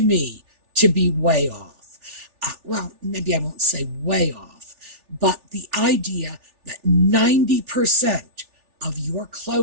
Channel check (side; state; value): left; late; 3.4 ms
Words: me to be way off. Well, maybe I won't say way off, but the idea that 90% of your